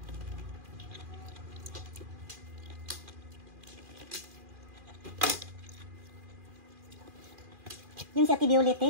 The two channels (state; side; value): late; left; 2.4 ms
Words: Yung si Ate Violet,